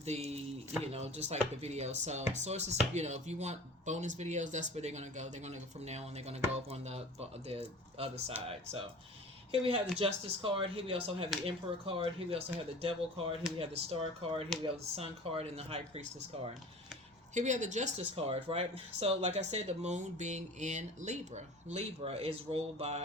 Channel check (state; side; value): normal; both; correlation 0.41